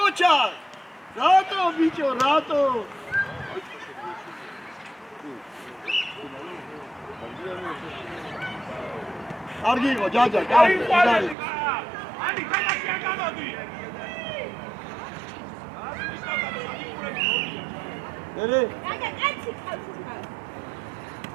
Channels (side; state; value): left; drops out; at 11.4 s